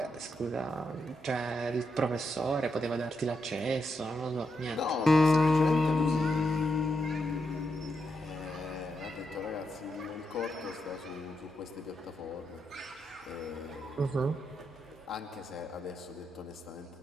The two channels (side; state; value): both; normal; correlation 0.83